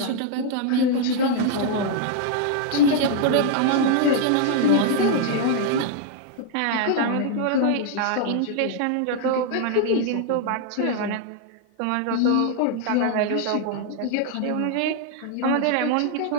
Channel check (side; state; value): both; different; correlation 0.00